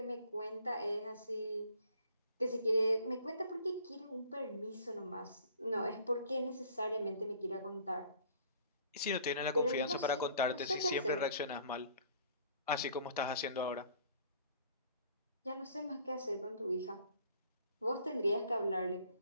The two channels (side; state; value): both; inverted; correlation -0.54